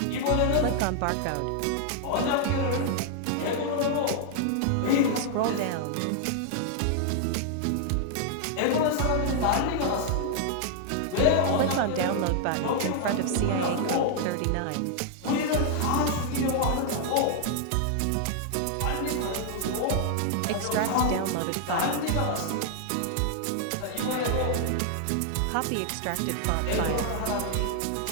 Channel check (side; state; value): both; different; correlation 0.00